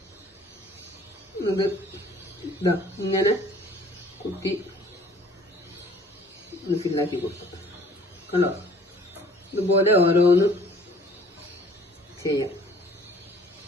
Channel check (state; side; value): normal; both; correlation 0.54